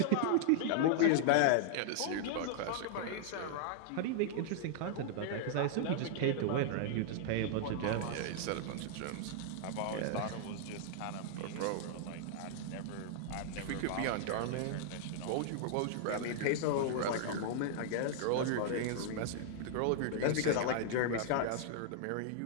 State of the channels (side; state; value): both; different; correlation -0.01